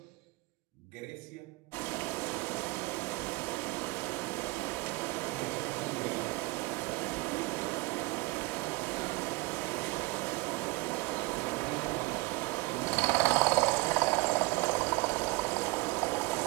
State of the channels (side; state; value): left; quieter; 22.5 dB